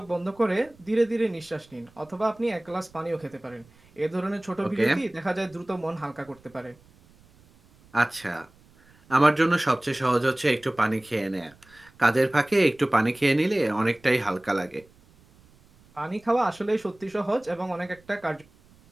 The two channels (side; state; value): right; noise; rumble, 28 dB below the sound